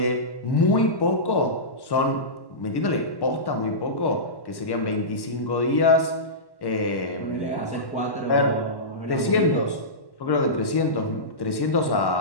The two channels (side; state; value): right; late; 1.1 ms